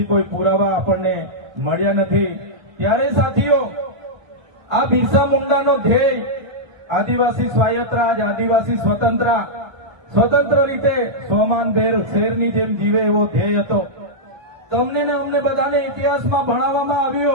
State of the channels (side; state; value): left; late; 1.1 ms